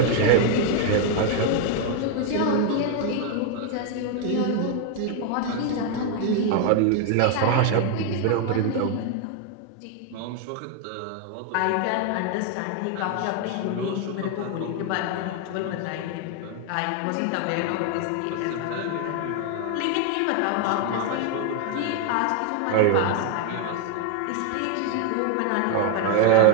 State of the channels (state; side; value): different; both; correlation 0.00